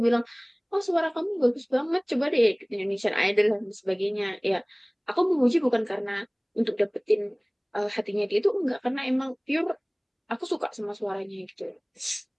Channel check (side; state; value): both; identical; correlation 1.00